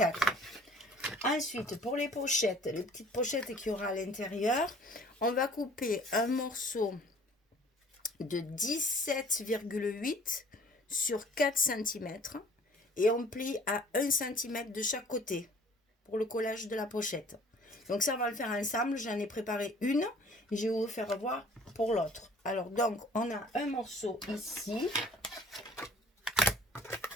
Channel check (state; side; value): normal; both; correlation 0.52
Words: Ensuite, pour les pochettes, les petites pochettes qu'il y aura à l'intérieur, on va couper un morceau de 17,8 sur 4 cm et on plie à 1 cm de chaque côté pour le collage de la pochette. Donc ça, on va le faire ensemble. J'en ai préparé une et je vais vous faire voir pour l'autre. Alors donc, on a un morceau ici.